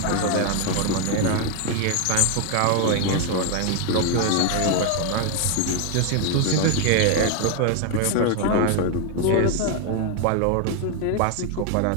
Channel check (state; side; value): different; both; correlation 0.01